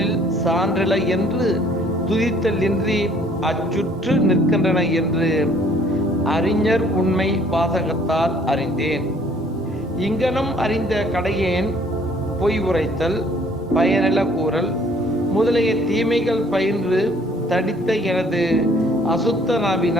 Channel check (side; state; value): both; normal; correlation 0.59